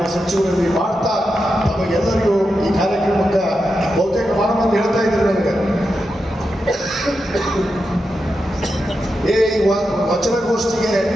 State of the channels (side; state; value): both; normal; correlation 0.88